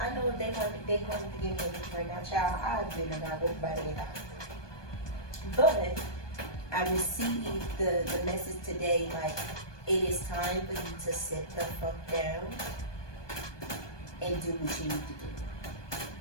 know if they wanted to give me a gift right now, child, I've been about everybody in house. But I received the message today, like, it is time for you to sit the fuck down and do what you need to do.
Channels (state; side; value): late; right; 1.2 ms